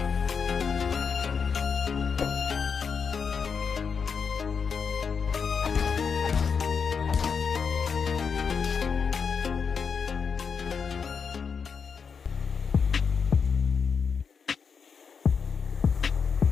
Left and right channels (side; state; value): right; quieter; 6.1 dB